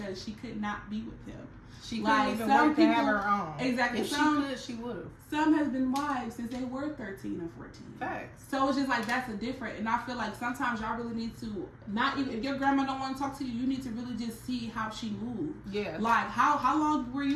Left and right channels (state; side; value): identical; both; correlation 1.00